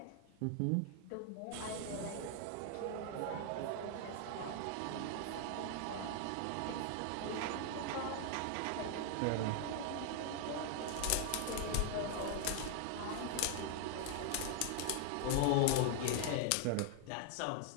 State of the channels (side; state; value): both; different; correlation 0.00